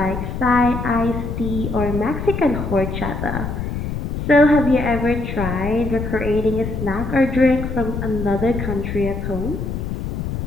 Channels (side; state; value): left; noise; rumble, 4 dB below the sound